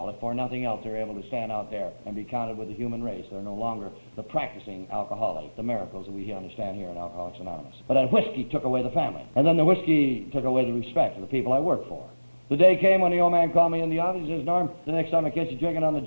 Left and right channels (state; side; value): inverted; both; correlation -1.00